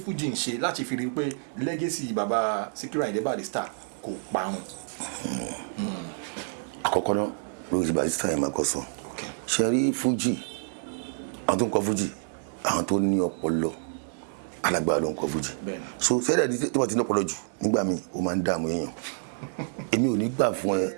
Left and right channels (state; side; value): silent; left; digital silence